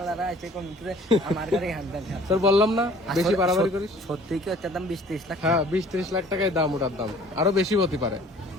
আছে কোন ভিতরে আমার গাড়ি হ্যান্ডেল। তোর বললাম না, বেশি বাড়াবাড়ি করিস। সত্যি কি ওটার দাম 20-30 লাখ? হ্যাঁ, 20-30 লাখ টাকায় দাম, ওটার দাম আরো বেশি হতে পারে,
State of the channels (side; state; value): both; normal; correlation 0.52